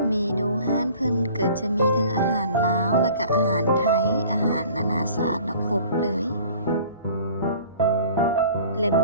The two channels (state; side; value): inverted; both; correlation -0.49